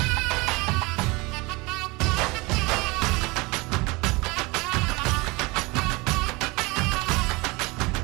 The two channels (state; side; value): quieter; left; 24.7 dB